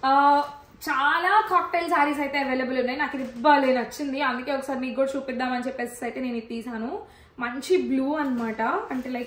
చాలా కాక్టైల్ శారీస్ అయితే అవైలబుల్ ఉన్నాయి. నాకు ఇది భలే నచ్చింది, అందుకే ఒకసారి మీకు కూడా చూపిద్దామని చెప్పేసి అయితే నేను ఇది తీసాను. మంచి బ్లూ అనమాట. అంటే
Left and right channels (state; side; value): identical; both; correlation 1.00